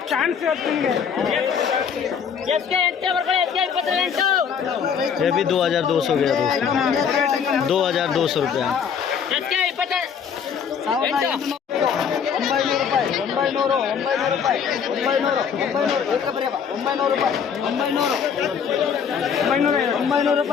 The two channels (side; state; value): right; quieter; 7.1 dB